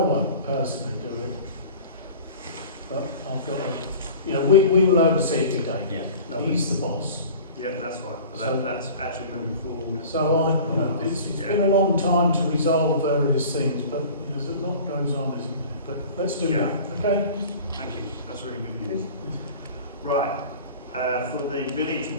won't personally do it, but I've got to, we will oversee it with David. Yeah, Lovely. He's the boss. Yeah, that's right. So- That's actually moving forward. So it's been a long time to resolve various things, but there's a lot goes on, isn't there? But let's do Yeah. that, okay? Thank you. That's really good news. Right. For the village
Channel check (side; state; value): both; inverted; correlation -0.41